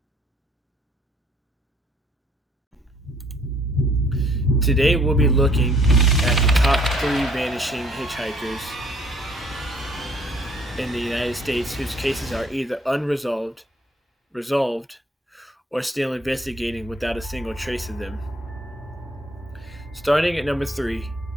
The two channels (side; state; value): both; normal; correlation 0.62